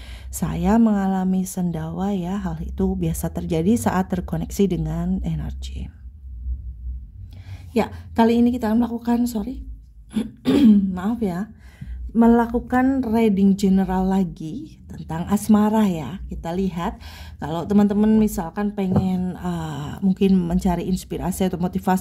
saya mengalami sendawa ya. Hal itu biasa terjadi saat terkoneksi dengan energi. Ya, kali ini kita melakukan maaf ya, melakukan reading general lagi tentang asmara ya. Kita lihat kalau teman-teman misalkan pengen mungkin mencari inspirasi atau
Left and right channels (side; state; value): both; identical; correlation 1.00